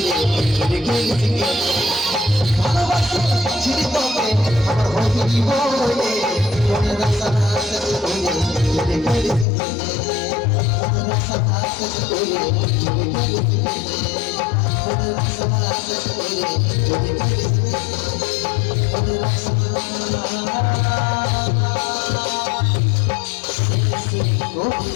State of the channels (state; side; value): drops out; right; at 9.5 s